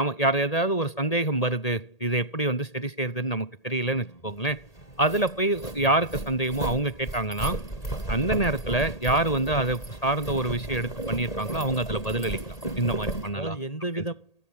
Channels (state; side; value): late; right; 1.8 ms